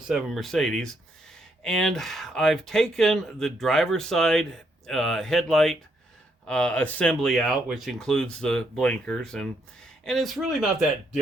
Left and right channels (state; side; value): normal; both; correlation 0.75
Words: Mercedes, and I've taken the driver's side headlight assembly out, which includes the blinkers, and it's really not that